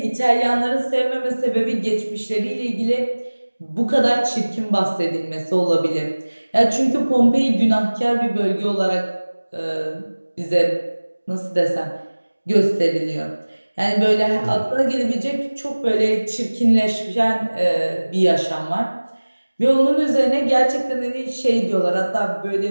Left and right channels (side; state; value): both; inverted; correlation -1.00